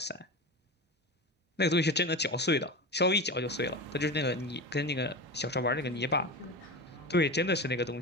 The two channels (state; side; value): normal; both; correlation 0.26